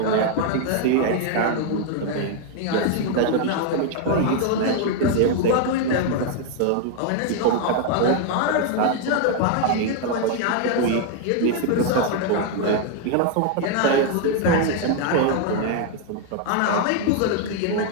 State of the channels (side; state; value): both; different; correlation 0.00